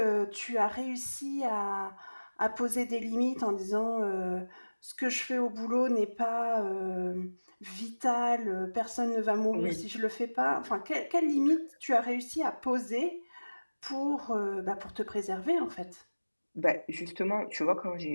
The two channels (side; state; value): both; inverted; correlation -1.00